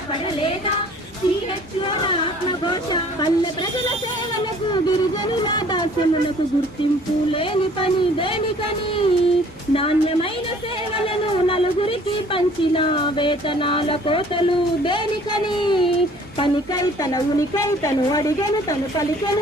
సిహెచ్ఓల ఆత్మఘోష పల్లె ప్రజల సేవలకు గిరిజనుల దాస్యములకు గుర్తింపు లేని పని దేనికని నాణ్యమైన సేవలను నలుగురికి పంచిన వేతనాల కోతలు దేనికని పనికై తన ఉనికై తను అడిగను తను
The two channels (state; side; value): normal; both; correlation 0.54